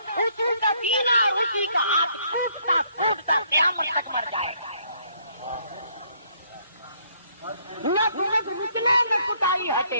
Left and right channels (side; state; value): both; inverted; correlation -0.67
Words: اسی کا سینہ اور اسی کا ہاتھ ٹوٹتا ٹوٹتا قیامت تک مر جائے گا. نہ بغض نکلے نہ کٹائی